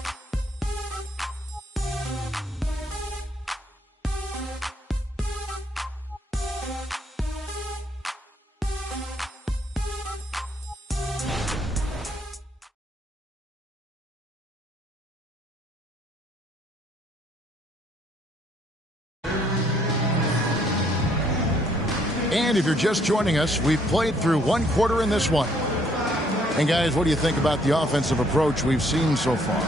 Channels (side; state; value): both; normal; correlation 0.67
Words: And if you're just joining us, we've played through 1 quarter in this one. And guys, what do you think about the offensive approach we've seen so far